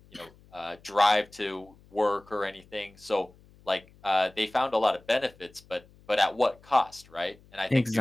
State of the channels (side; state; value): left; noise; hum, 27 dB below the sound